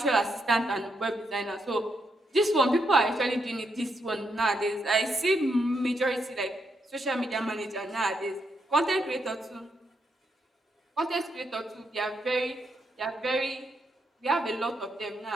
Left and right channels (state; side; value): normal; both; correlation 0.79